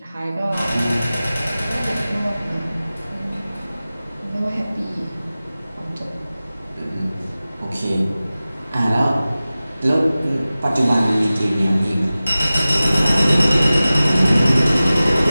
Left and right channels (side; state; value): both; inverted; correlation -0.96